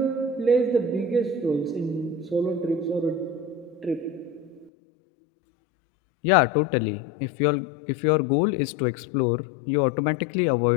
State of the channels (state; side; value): drops out; right; at 4.7 s